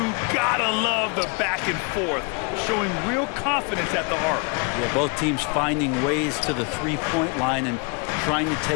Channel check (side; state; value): right; quieter; 33.3 dB